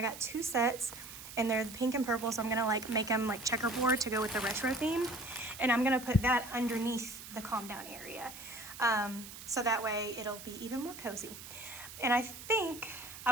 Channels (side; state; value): right; noise; hiss, 13 dB below the sound